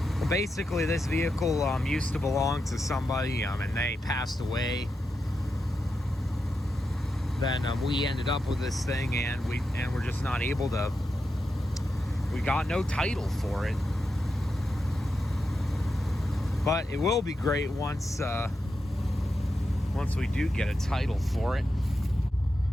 basically this vehicle used to belong to somebody and they passed away. Then we ended up with this thing and we're just not able to, we got no title for it. But it will be great once we do get a title for it.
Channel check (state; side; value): normal; both; correlation 0.87